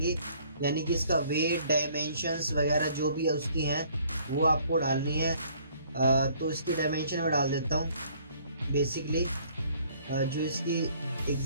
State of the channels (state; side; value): inverted; both; correlation -0.60